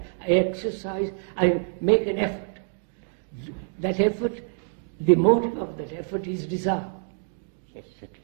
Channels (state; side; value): silent; left; 61 dB below the other